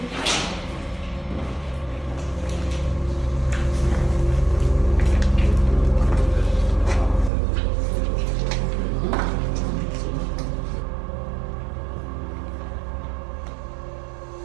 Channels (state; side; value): drops out; left; at 7.3 s